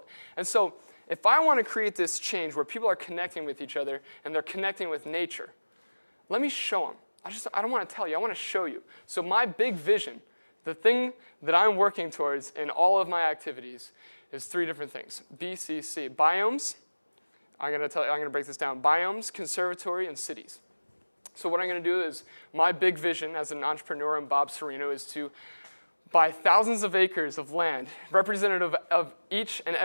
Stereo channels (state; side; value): inverted; both; correlation -1.00